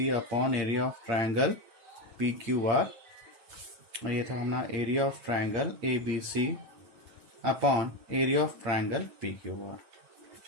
upon area of triangle PQR. और ये था हमारा area of triangle ABC upon area of triangle PQR.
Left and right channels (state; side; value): late; left; 9.2 ms